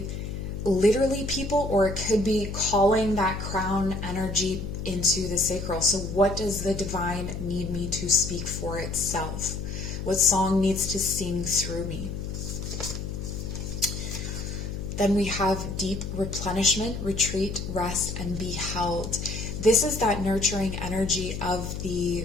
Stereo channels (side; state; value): left; noise; hum, 6 dB below the sound